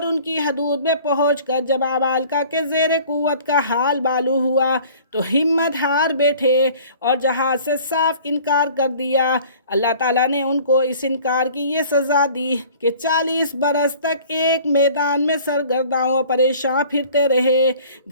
ان کی حدود میں پہنچ کر جب عمالقہ کے زیر قوت کا حال معلوم ہوا تو ہمت ہار بیٹھے اور جہاد سے صاف انکار کر دیا۔ اللہ تعالیٰ نے ان کو اس انکار کی یہ سزا دی کہ 40 برس تک ایک میدان میں سرگرداں و پریشاں پھرتے رہے،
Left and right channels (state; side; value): inverted; both; correlation -0.49